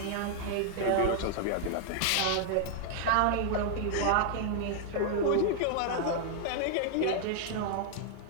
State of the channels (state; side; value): different; both; correlation 0.00